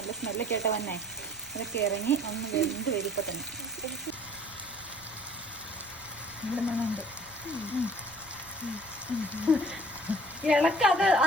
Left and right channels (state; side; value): noise; right; rumble, 23 dB below the sound